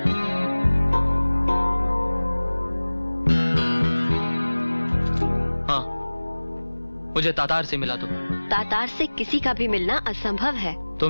हाँ, मुझे तातार से मिला दो। तातार से किसी का भी मिलना असंभव है।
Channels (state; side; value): inverted; both; correlation -1.00